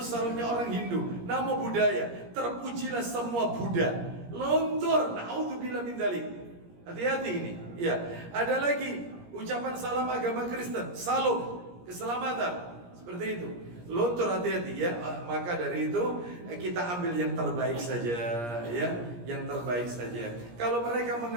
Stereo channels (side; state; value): left; late; 17 ms